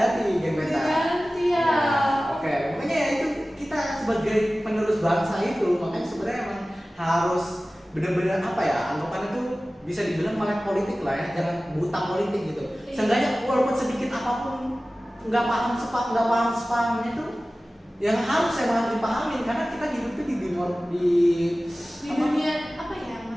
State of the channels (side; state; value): both; normal; correlation 0.97